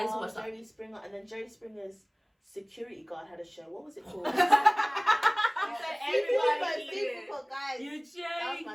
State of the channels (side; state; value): both; identical; correlation 1.00